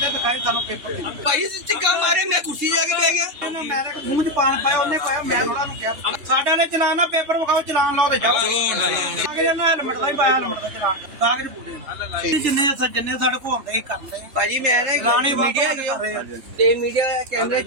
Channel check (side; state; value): left; late; 3.2 ms